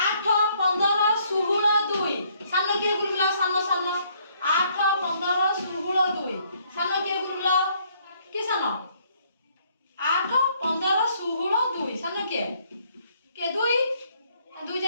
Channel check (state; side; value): inverted; both; correlation -0.66